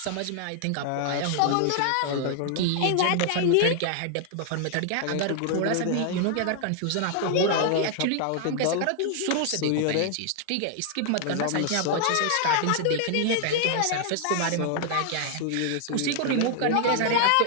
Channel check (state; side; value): different; both; correlation 0.00